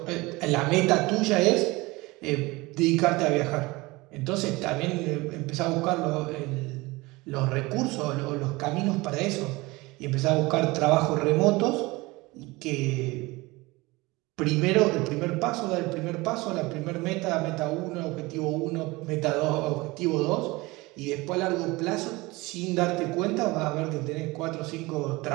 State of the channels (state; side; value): quieter; left; 22.3 dB